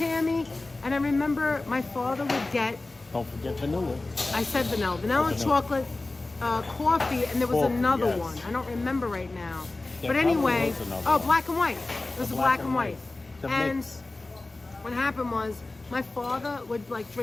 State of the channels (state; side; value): quieter; right; 3.1 dB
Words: And I remember my father would get. Don't forget vanilla. I said vanilla, chocolate, coffee, and there was Coffee, another yes. one. I don't remember right now. There But anyway, probably was another black and white. It was a black and white. The And mix. what happened was my father would like